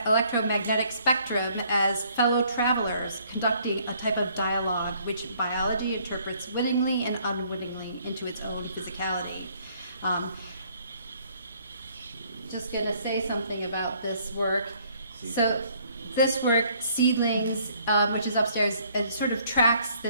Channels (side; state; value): both; inverted; correlation -0.63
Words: spectrum as fellow travelers conducting a type of dialogue which biology interprets wittingly and unwittingly into its own physicality. Just gonna say something about this work. So this work, Seedlings, which is upstairs, it sort of tracks